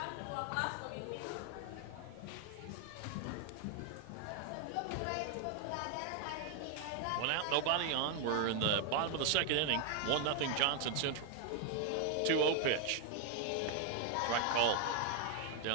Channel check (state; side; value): different; both; correlation 0.00